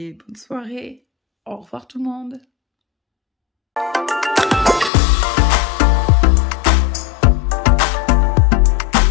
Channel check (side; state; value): right; drops out; at 4.9 s